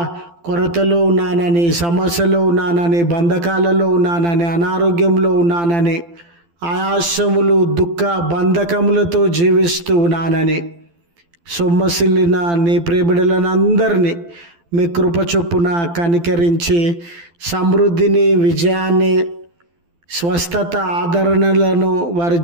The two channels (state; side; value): late; left; 12 ms